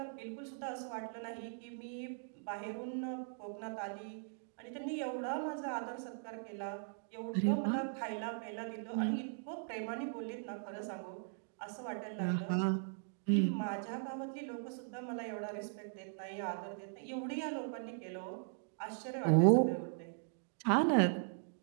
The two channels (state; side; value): silent; left; digital silence